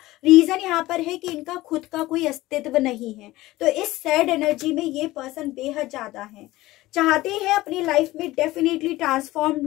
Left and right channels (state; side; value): quieter; right; 17.9 dB